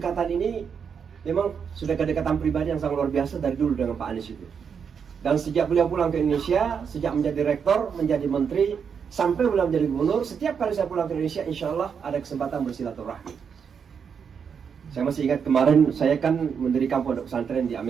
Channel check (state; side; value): quieter; left; 6.8 dB